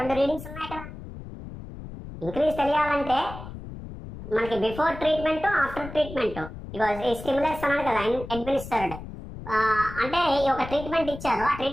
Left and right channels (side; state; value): left; noise; rumble, 12 dB below the sound